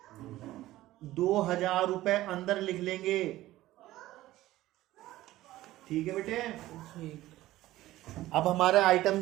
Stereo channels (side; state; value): left; quieter; 15.9 dB